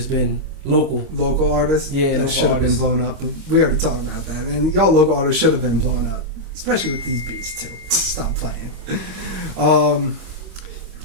been local. Local artists. Yeah, that should have been blown up. But we already talked about that, and y'all local artists should have been blown up, especially with these beats too. Stop playing.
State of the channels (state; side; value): late; left; 25 ms